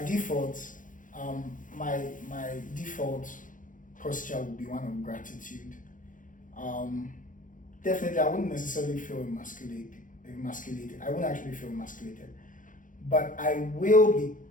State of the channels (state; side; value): late; right; 0.38 ms